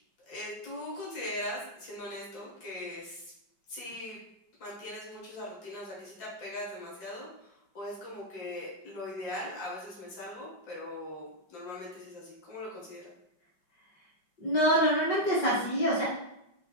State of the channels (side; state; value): right; late; 5.2 ms